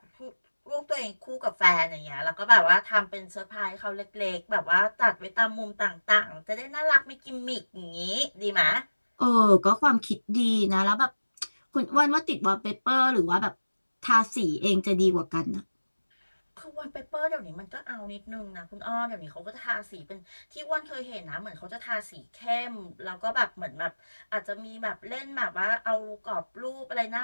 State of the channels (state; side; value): inverted; both; correlation -1.00